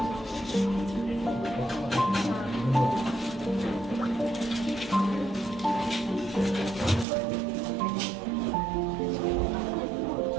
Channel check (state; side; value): drops out; left; at 7.1 s